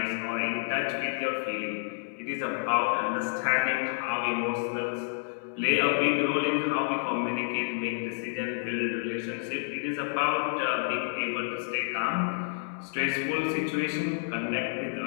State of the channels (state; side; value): silent; right; digital silence